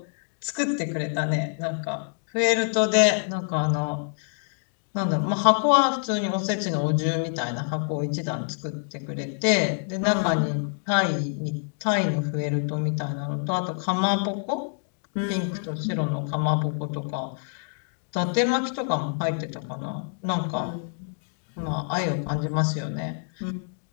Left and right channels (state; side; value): silent; right; digital silence